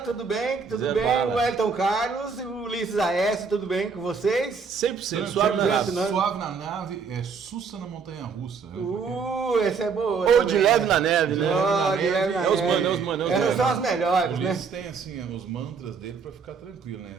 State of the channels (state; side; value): quieter; left; 5.4 dB